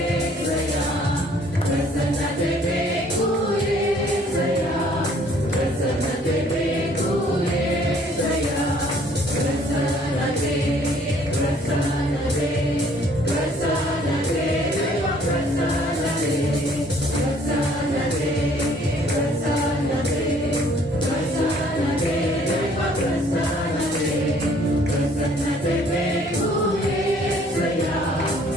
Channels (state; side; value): normal; both; correlation 0.59